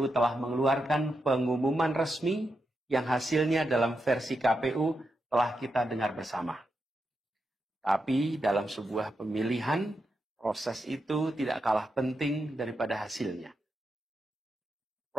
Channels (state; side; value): normal; both; correlation 0.86